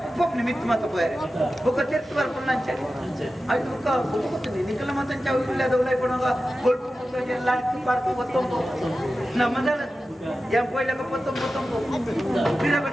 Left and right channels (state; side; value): normal; both; correlation 0.93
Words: ಪೊಪ್ಪನಿ ಮಿತ್ತು ಮತ್ತ ಪೋಯರೆ ಬೊಕ್ಕ ತಿರ್ತು ಬರ್ಕೊಂಡು ಅಂಚರಿ ಅದು ಬೊಕ್ಕ ಗೊತ್ತಿದೆ ನಿಕಲ ಮತ್ತಂಚ ಇಲ್ಲದ ಉಳ್ಳಾಯಿ ಕೊಡುವಾಗ ಗೊಲ್ಪು ಎಲ್ಲ park ಗೊತ್ತೊಂಬು ನಮ್ಮದಲ್ಲ yang poin lega potong-potong bila